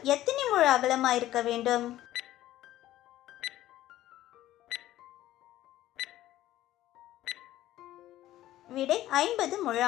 எத்தனை முழ அகலமாயிருக்க வேண்டும்? விடை 50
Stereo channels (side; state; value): right; quieter; 14.3 dB